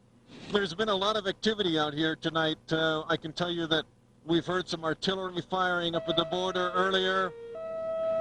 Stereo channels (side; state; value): both; identical; correlation 1.00